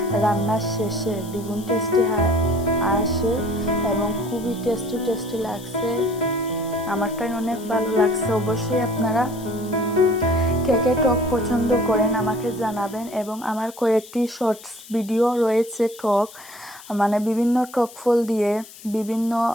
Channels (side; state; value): left; noise; hiss, 19 dB below the sound